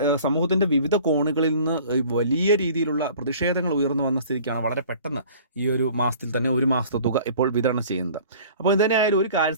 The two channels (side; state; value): both; inverted; correlation -0.47